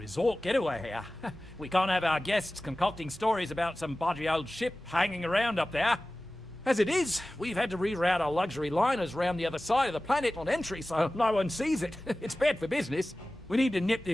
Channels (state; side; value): normal; both; correlation 0.97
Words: getaway here. We can't have our guests concocting stories about some budgy old ship hanging around up there. As it is, we've had to reroute our luxury liners round the other side of the planet on entry so no one sees it. It's bad for business. We need to nip